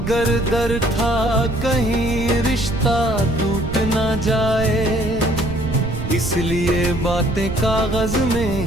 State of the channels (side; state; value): right; noise; rumble, 6 dB below the sound